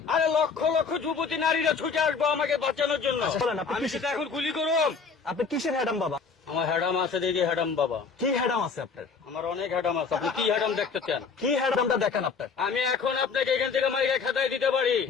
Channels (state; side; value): quieter; right; 5.3 dB